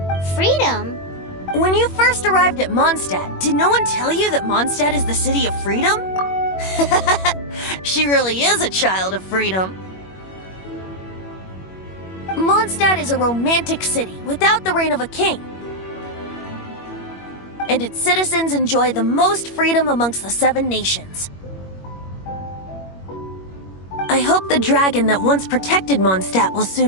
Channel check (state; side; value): late; right; 21 ms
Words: Freedom? When you first arrived at Mondstadt, did no one tell you that Mondstadt is the city of freedom? She really is a child of freedom. Mondstadt is a romantic city without the reign of a king. And its citizens enjoy the most freedom amongst the 7 nations. I hope the dragon that once protected Mondstadt will